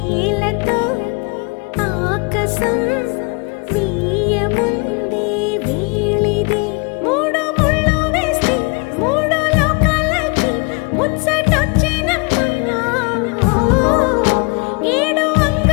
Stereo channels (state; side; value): quieter; right; 31.8 dB